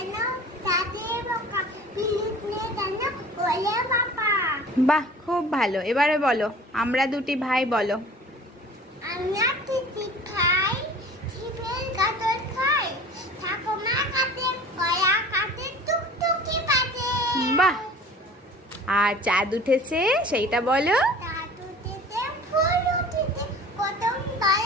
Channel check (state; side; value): normal; both; correlation 0.43